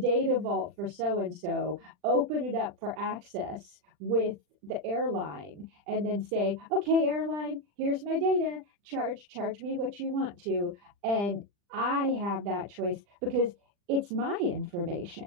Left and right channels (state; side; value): late; left; 40 ms